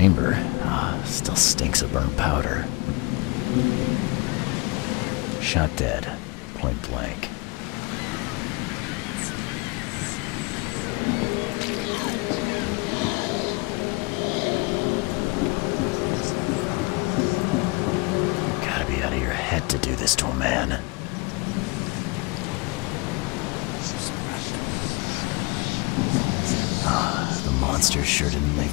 Still stinks of burnt powder. Shot dead. Point blank. Gotta be out of your head to do this to a man. The monster sure didn't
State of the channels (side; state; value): right; quieter; 27.0 dB